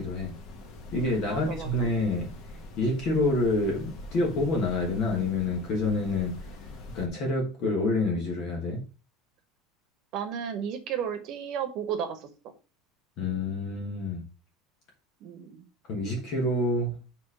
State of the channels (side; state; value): both; normal; correlation 0.36